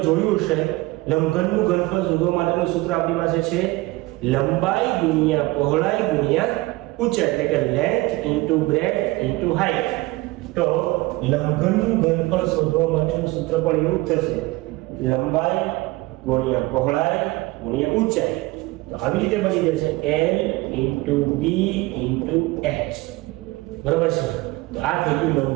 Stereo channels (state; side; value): quieter; left; 20.9 dB